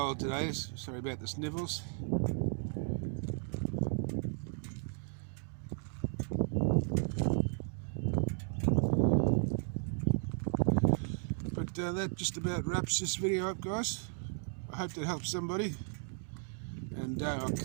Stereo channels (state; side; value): silent; left; 54 dB below the other